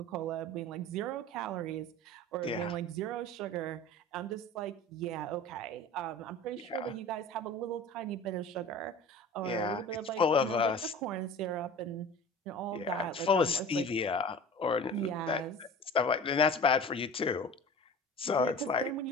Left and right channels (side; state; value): both; normal; correlation 0.39